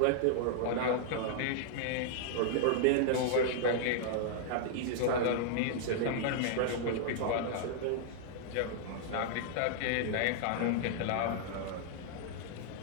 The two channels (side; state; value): both; different; correlation -0.01